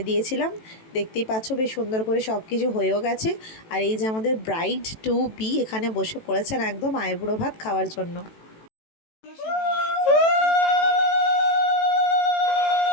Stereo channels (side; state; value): right; late; 18 ms